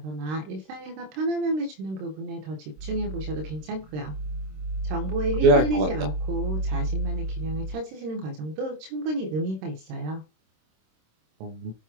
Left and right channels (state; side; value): late; left; 26 ms